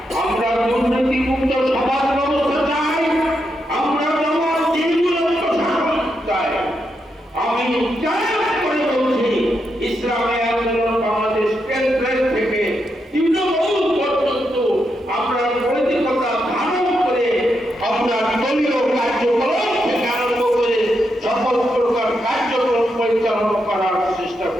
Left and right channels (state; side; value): normal; both; correlation 0.83